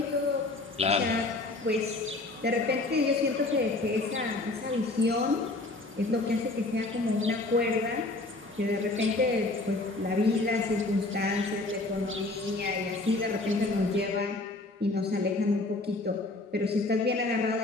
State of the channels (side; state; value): right; quieter; 3.0 dB